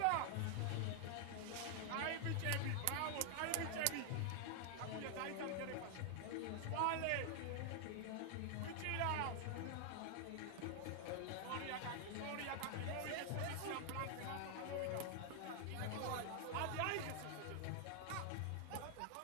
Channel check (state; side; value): different; both; correlation 0.00